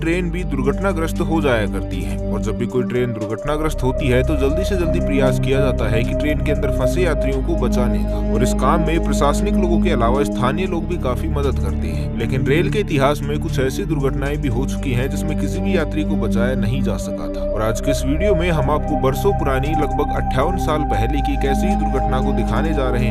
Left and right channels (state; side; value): identical; both; correlation 1.00